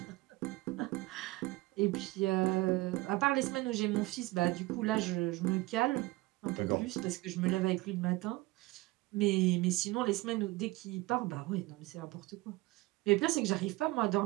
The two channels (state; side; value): quieter; left; 20.5 dB